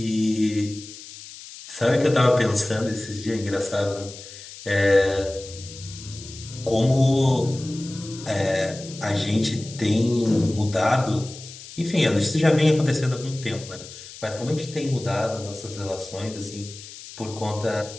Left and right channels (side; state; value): left; noise; hiss, 15 dB below the sound